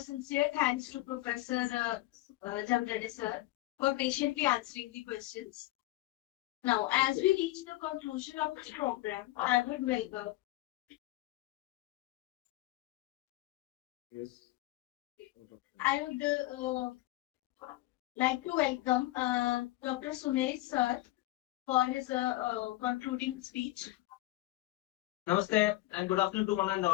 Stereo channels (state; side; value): quieter; right; 18.0 dB